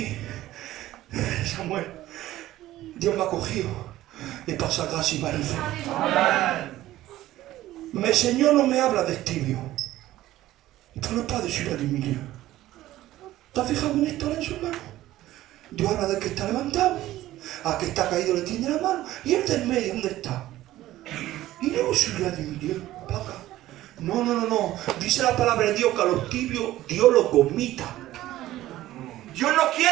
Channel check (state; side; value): quieter; left; 15.1 dB